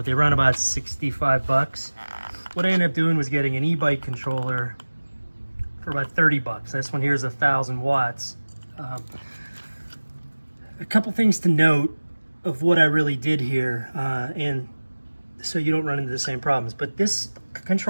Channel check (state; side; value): inverted; both; correlation -1.00